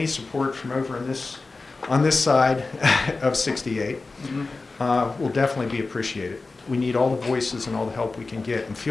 support from over on this side of 68 will definitely be appreciated. We need all the voices and all the help we can get. And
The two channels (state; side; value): quieter; right; 3.7 dB